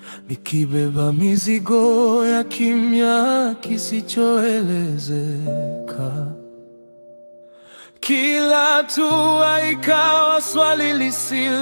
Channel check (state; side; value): inverted; both; correlation -1.00